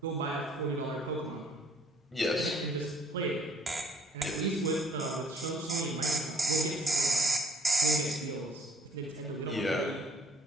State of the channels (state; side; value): normal; both; correlation 0.63